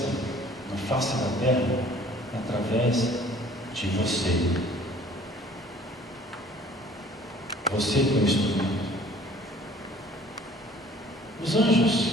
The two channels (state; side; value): normal; both; correlation 0.53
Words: na face da terra através de você. Você que é o instrumento. Os anjos